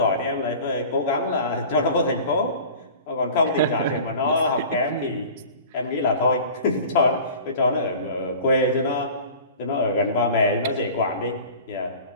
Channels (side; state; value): both; inverted; correlation -0.41